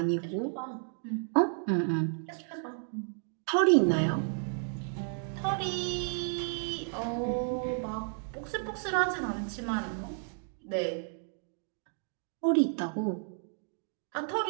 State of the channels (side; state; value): left; silent; 56 dB below the other